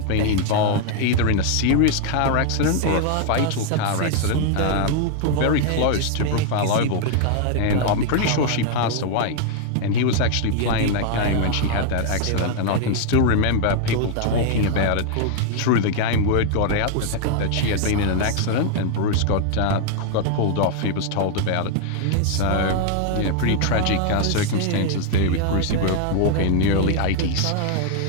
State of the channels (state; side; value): different; both; correlation 0.00